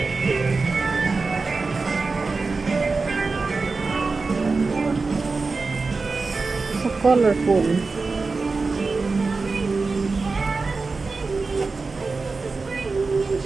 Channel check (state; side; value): quieter; left; 4.1 dB